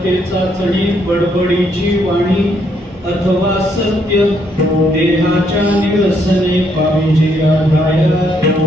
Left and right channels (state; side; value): normal; both; correlation 0.72